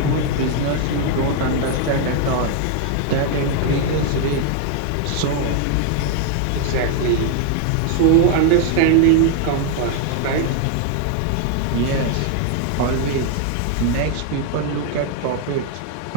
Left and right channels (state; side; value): different; both; correlation 0.00